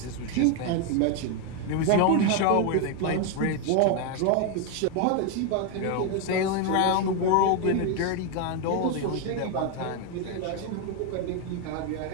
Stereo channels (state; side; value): different; both; correlation 0.01